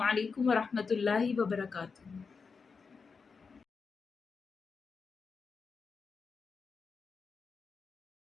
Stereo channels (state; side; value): quieter; right; 5.1 dB